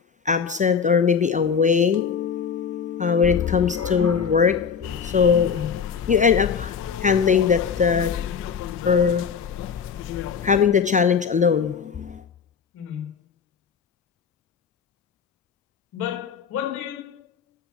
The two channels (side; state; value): right; quieter; 6.4 dB